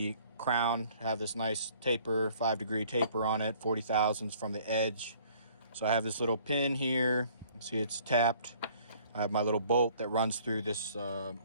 crown. Have this nice taper, 5-degree taper on it, 40 thousandths from the edge. So I have this little pin here. You see it's tapped. I have my little bolt that runs through this little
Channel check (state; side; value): inverted; both; correlation -0.56